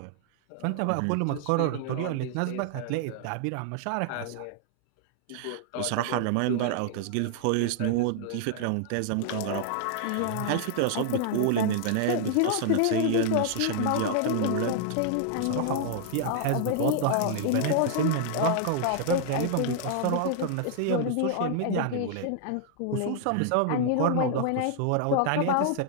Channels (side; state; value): both; different; correlation -0.01